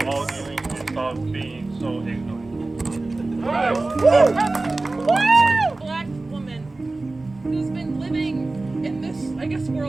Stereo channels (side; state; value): left; quieter; 3.2 dB